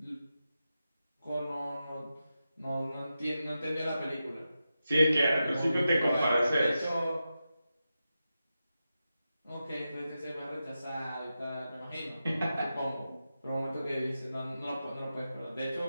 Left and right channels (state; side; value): inverted; both; correlation -0.91